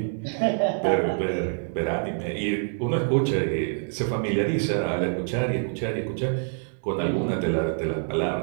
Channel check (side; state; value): left; silent; digital silence